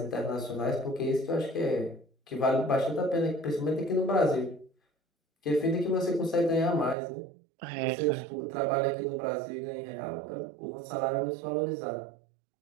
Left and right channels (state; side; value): drops out; left; at 7.0 s